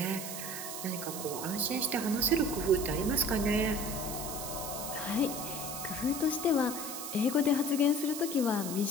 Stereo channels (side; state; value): right; noise; hiss, 7 dB below the sound